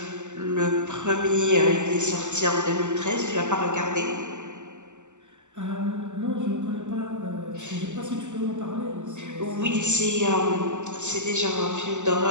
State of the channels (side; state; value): left; late; 0.84 ms